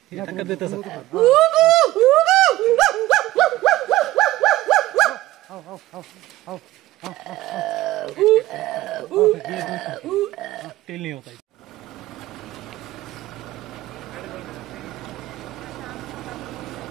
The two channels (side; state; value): left; quieter; 16.4 dB